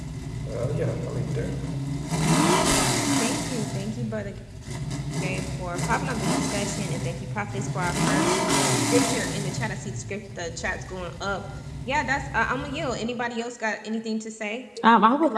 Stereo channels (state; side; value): identical; both; correlation 1.00